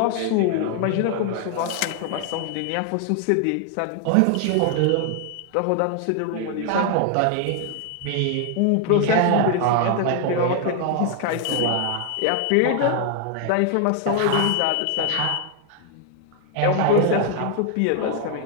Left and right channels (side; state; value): both; different; correlation 0.00